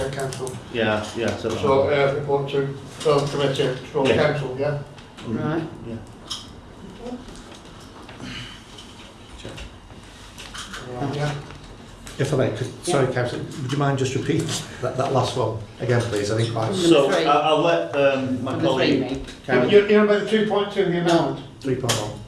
council. yeah. So, report to relevant committee, to Yeah. council, yeah? Right. Yeah. Yeah. If I may, sorry, Councillor, would you mind just repeating that last one again, please? I think quite So Number three. I'll let my Number three, colleague me. Karen. You know about the 2.2, the amount? 3.1.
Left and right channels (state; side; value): identical; both; correlation 1.00